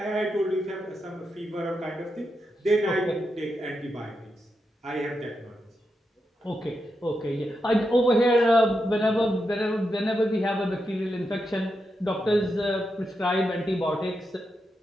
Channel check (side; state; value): both; normal; correlation 0.86